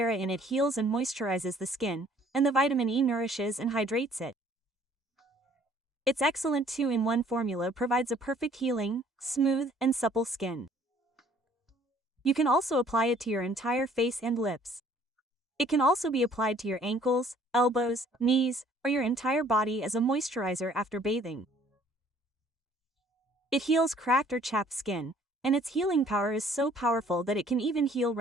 in it heals and moisturizes the skin, and the vitamin E nourishes and hydrates it. Its excellent 2-in-1 formula provides a perfect healing, smooth, and supple skin. You can also apply it to your entire face and lips. It can also be applied to your ankles, elbows, knees, or your entire body as a moisturizer after bathing. It heals cracked or chapped skin, and its healing power is so powerful that it can even heal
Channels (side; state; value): both; normal; correlation 0.58